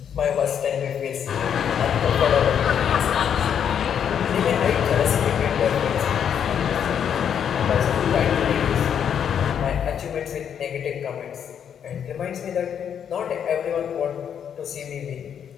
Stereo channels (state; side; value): quieter; right; 8.4 dB